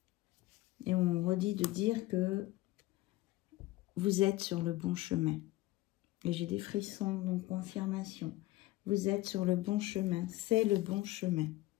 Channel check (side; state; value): right; quieter; 18.0 dB